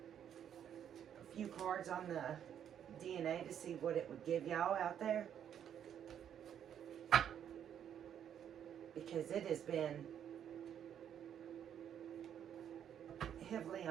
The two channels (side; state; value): left; quieter; 9.3 dB